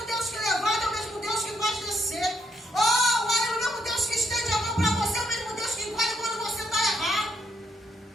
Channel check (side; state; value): both; normal; correlation 0.75